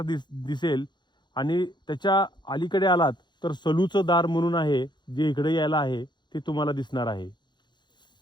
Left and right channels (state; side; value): late; right; 0.21 ms